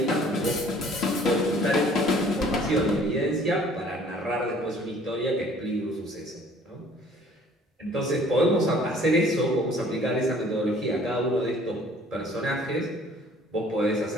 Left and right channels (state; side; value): normal; both; correlation 0.55